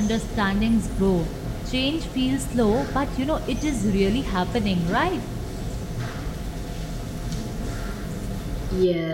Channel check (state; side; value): identical; both; correlation 1.00